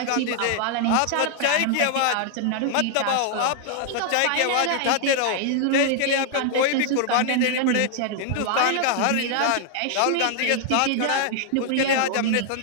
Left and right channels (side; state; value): both; different; correlation 0.00